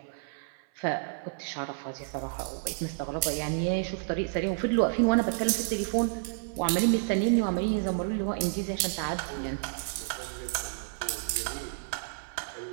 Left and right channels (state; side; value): silent; left; 58 dB below the other